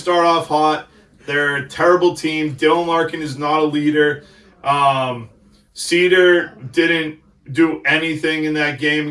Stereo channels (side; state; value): both; identical; correlation 1.00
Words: off hot. They're a terrible team. Dylan Larkin is not a leader. Cedar didn't do anything in that game